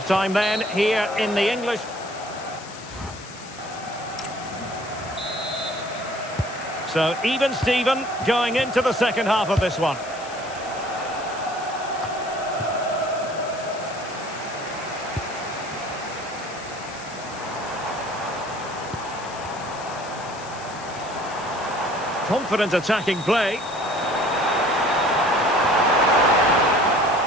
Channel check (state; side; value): noise; left; hiss, 17 dB below the sound